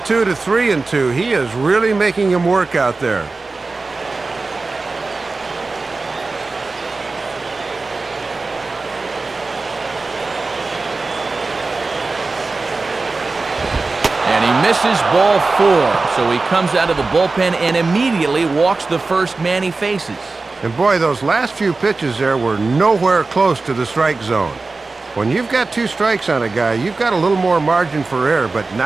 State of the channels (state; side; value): quieter; left; 3.7 dB